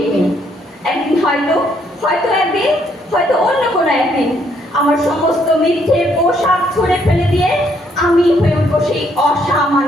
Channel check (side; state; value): both; normal; correlation 0.70